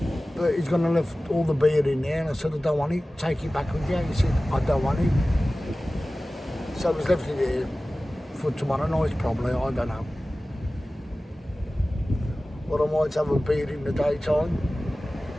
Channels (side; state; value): both; normal; correlation 0.97